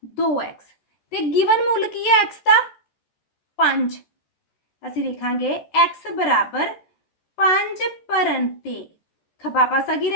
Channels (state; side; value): late; right; 14 ms